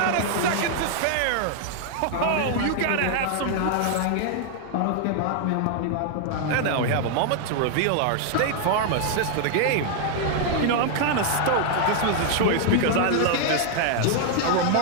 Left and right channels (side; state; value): both; different; correlation 0.00